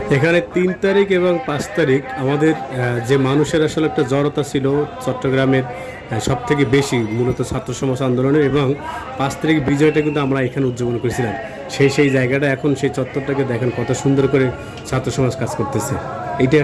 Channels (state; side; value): identical; both; correlation 1.00